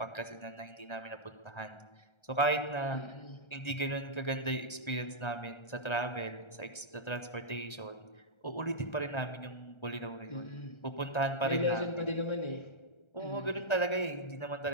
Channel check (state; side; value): late; right; 1.3 ms